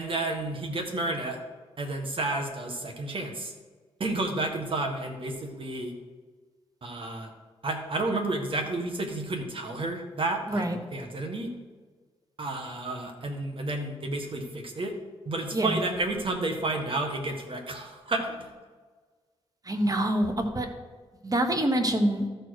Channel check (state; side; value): normal; both; correlation 0.50